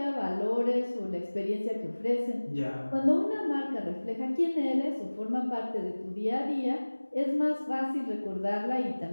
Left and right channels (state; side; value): inverted; both; correlation -1.00